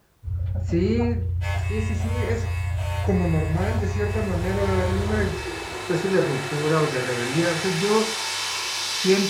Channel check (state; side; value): identical; both; correlation 1.00